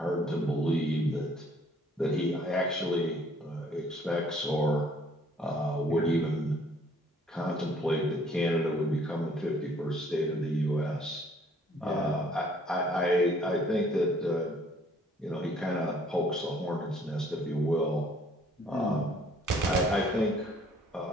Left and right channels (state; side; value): normal; both; correlation 0.60